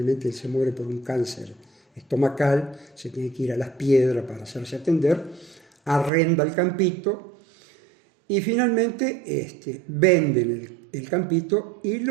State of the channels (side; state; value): left; drops out; at 6.1 s